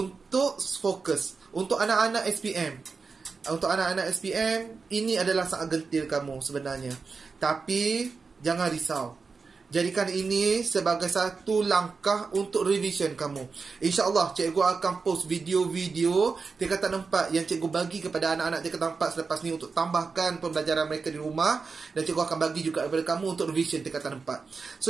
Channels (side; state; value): left; quieter; 4.7 dB